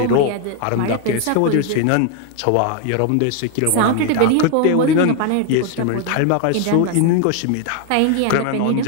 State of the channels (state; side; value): different; both; correlation 0.01